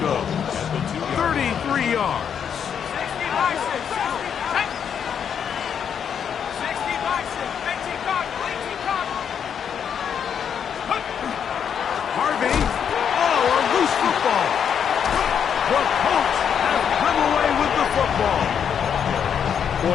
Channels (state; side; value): quieter; right; 7.9 dB